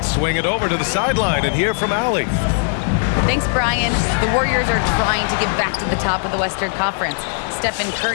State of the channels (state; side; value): silent; right; digital silence